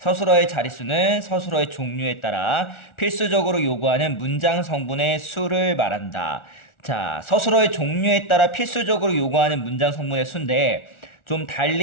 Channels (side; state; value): right; late; 1.4 ms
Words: 자릿수는 서술어의 종류에 따라 필수적으로 요구하는 문장 성분의 수를 말한다. 자, 서술어의 종류에 따라 필수적으로 요구하는 문장 성분의 수인데 좀